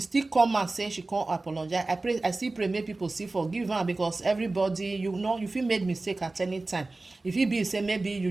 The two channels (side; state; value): left; quieter; 3.2 dB